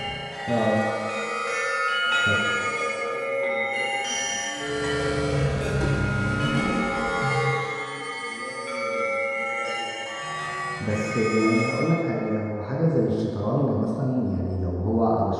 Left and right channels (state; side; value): identical; both; correlation 1.00